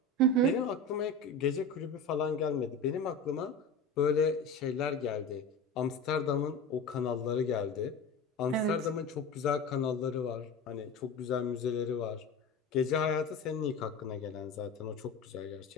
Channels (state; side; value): quieter; right; 3.1 dB